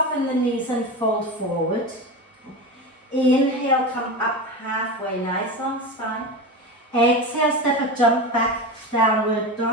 the knees and fold forward. Inhale, come up halfway, nice long spine. Exhale, step a jump back, downward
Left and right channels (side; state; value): both; normal; correlation 0.23